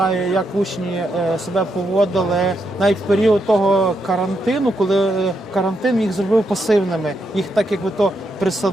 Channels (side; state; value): both; normal; correlation 0.81